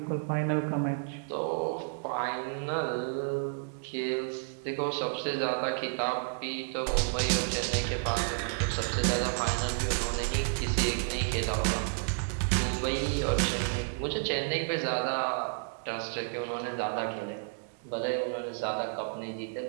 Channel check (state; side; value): silent; left; digital silence